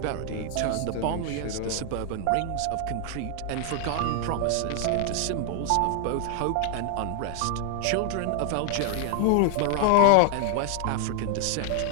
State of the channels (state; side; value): different; both; correlation 0.00